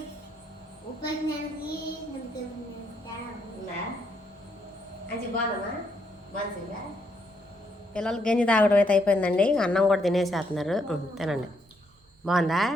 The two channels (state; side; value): normal; both; correlation 0.75